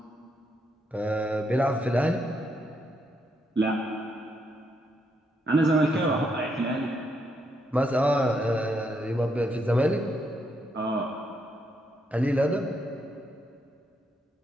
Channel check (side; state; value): both; normal; correlation 0.77